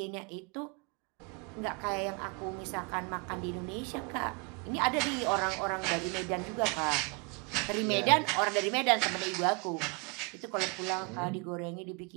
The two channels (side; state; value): left; quieter; 31.8 dB